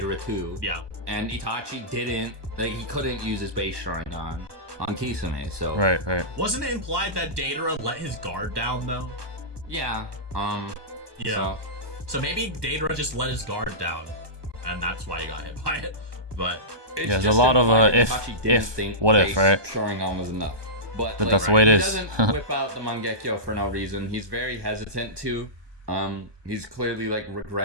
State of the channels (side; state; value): left; late; 1.2 ms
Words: too. Yeah. And Itachi didn't, like, he couldn't use his base Sharingan on Kisame, so. Right, right. Wasn't it implied that Deidara let his guard down, though? Yeah, Yeah. So maybe Deidara just let his guard down, and that's why he got hit by it. But it's Yeah, there's a just lot of, implied if- Itachi didn't if, think what if, base right? Sharingan was enough. But But that's the way it he is. doesn't whip out the Mangekyo for no reason. He's very hesitant to. He's clearly like